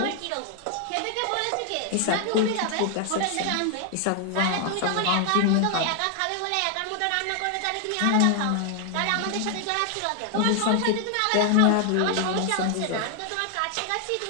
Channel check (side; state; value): both; different; correlation 0.00